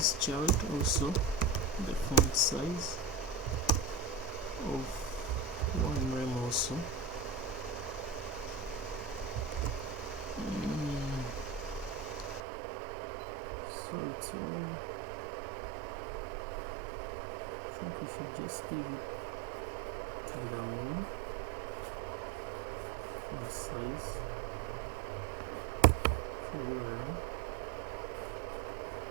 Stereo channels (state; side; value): drops out; left; at 12.4 s